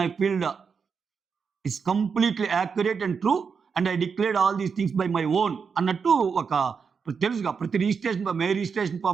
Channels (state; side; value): quieter; left; 5.9 dB